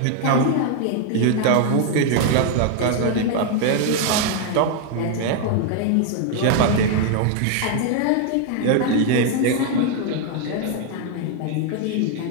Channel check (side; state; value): both; different; correlation 0.00